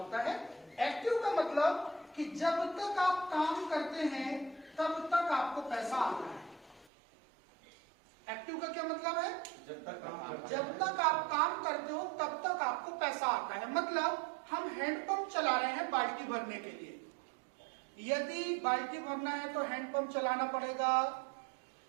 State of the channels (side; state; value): left; drops out; at 6.9 s